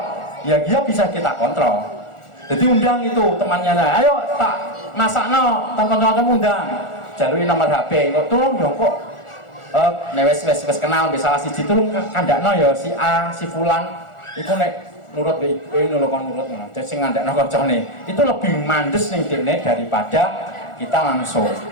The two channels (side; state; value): right; late; 1.4 ms